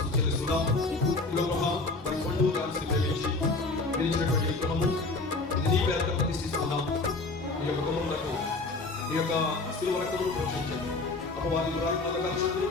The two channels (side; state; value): right; quieter; 3.4 dB